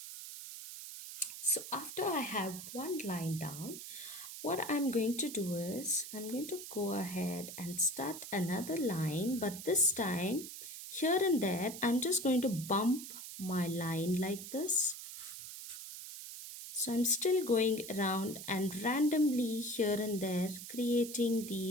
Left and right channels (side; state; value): right; noise; hiss, 10 dB below the sound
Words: So after I have one line down, what I'm going to do is I'm going to go ahead and start another line, but this time here and there I'm just going to bump my line like this. So I'm still going around and randomly here and there creating